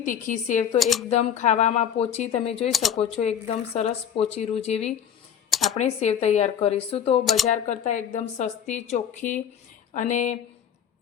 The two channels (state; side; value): quieter; right; 8.7 dB